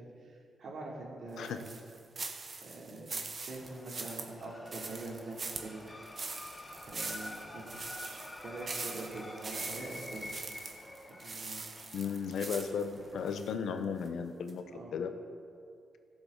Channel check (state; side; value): normal; both; correlation 0.74